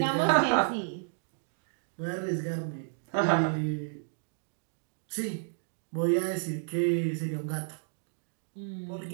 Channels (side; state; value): left; silent; digital silence